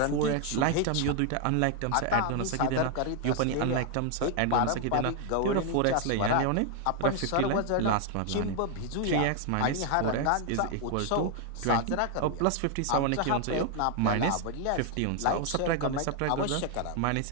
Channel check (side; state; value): both; different; correlation 0.00